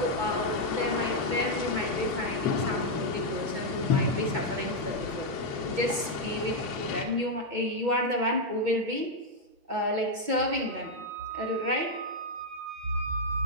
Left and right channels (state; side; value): late; left; 2.2 ms